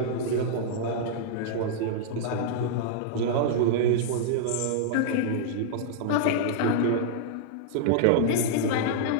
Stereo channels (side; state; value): both; different; correlation -0.01